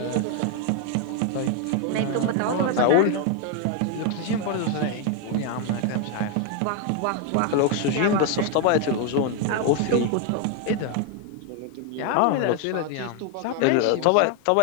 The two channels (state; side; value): different; both; correlation 0.01